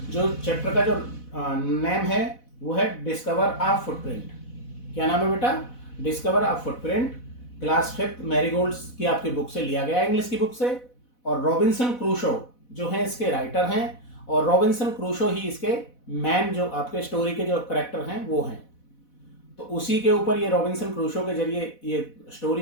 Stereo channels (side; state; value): right; late; 4.1 ms